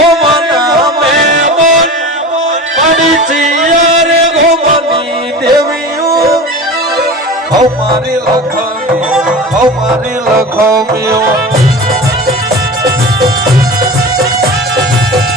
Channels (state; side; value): normal; both; correlation 0.33